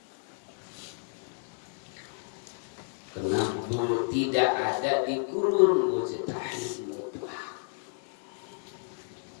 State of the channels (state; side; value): silent; right; digital silence